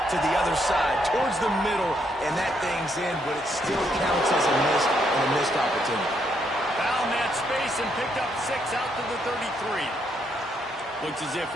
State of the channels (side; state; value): both; normal; correlation 0.74